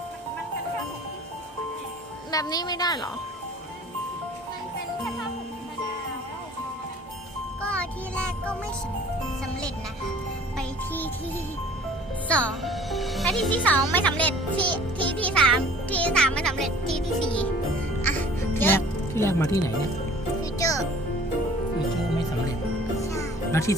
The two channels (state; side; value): normal; both; correlation 0.50